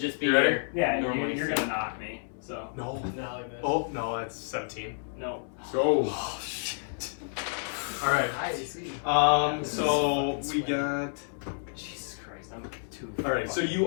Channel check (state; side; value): silent; right; 58 dB below the other